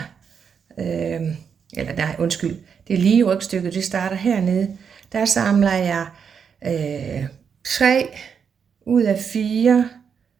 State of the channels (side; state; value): left; quieter; 6.8 dB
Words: Det er lige rygstykket, det starter hernede. Der samler jeg 3 ud af 4